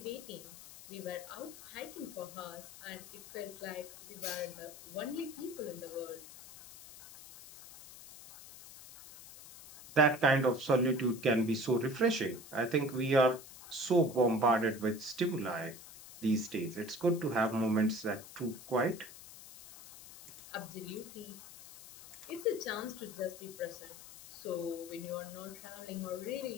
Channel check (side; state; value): left; noise; hiss, 16 dB below the sound